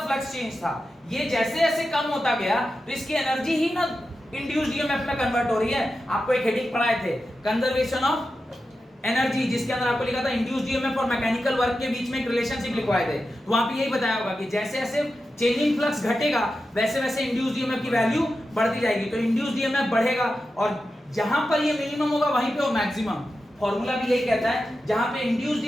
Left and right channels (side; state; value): both; normal; correlation 0.91